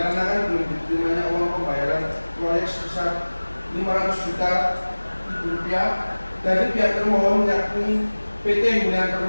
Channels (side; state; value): both; inverted; correlation -1.00